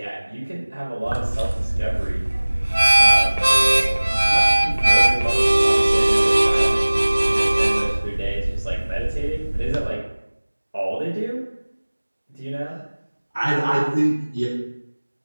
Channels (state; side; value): inverted; both; correlation -1.00